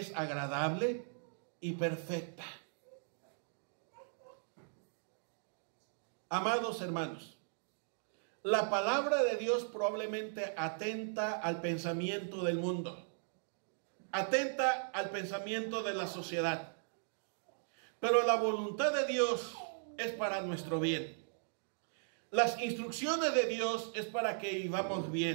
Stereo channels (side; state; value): left; silent; digital silence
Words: agradable y perfecta. Amados hermanos, La palabra de Dios probablemente atenta al pensamiento del mundo, atenta al pensamiento de la sociedad. Pero la voluntad de Dios es para nuestro bien. Las instrucciones de Dios es para que vivamos